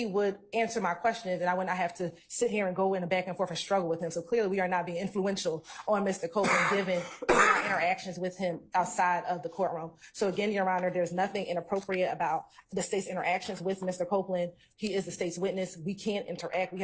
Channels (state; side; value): identical; both; correlation 1.00